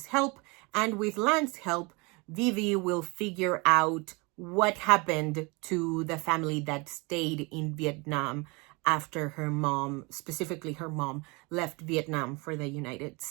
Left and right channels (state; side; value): quieter; left; 28.0 dB